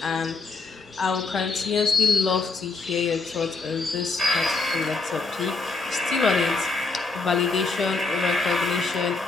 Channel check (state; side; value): quieter; right; 3.8 dB